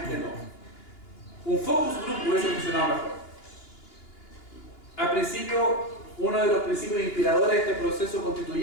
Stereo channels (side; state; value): right; late; 2.9 ms